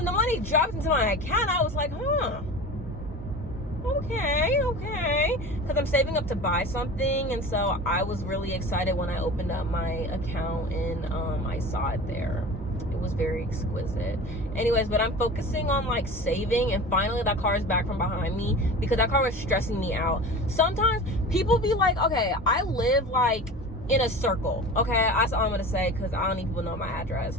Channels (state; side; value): normal; both; correlation 0.35